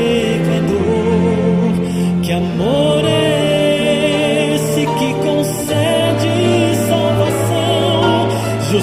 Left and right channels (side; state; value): both; identical; correlation 1.00